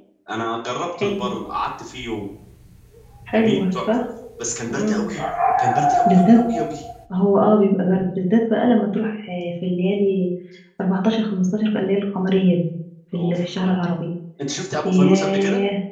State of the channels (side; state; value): both; identical; correlation 1.00